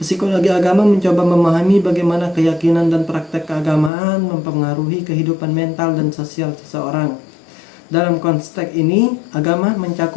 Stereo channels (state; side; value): drops out; right; at 3.9 s